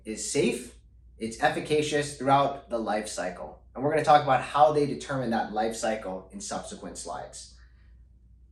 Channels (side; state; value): both; identical; correlation 1.00